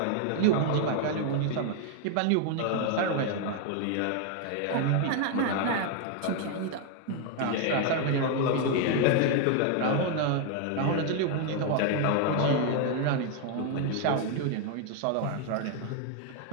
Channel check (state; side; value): different; both; correlation 0.00